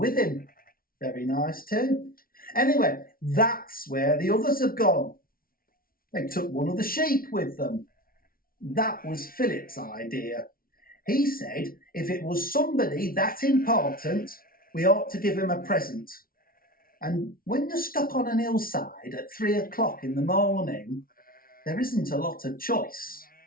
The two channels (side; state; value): right; late; 0.43 ms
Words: him. Very nice too. Anyway, that's where the others have gone. They took one of the sheep with them. That was Philip's idea. He said if it was somebody that important, we ought to give him a present. And when you're stuck on an hillside at 3 o'clock in the morning, there isn't a lot of choice.